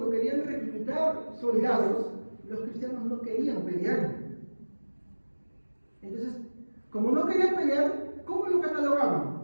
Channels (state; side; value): inverted; both; correlation -1.00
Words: querían reclutar soldados, los cristianos no querían pelear. Entonces, como no querían pelear, ¿cómo lo catalogaban?